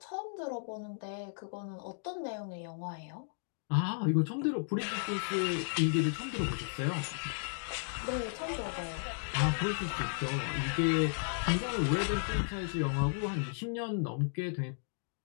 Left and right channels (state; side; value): silent; right; digital silence